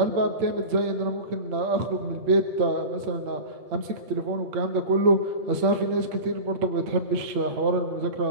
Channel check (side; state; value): left; late; 8.7 ms